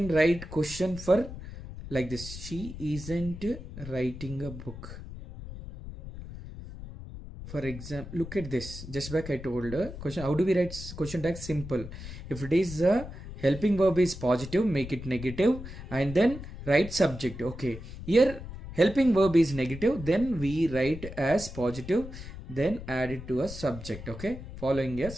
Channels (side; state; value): left; noise; rumble, 11 dB below the sound